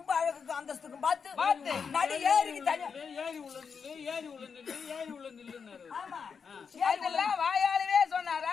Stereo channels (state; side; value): quieter; right; 6.1 dB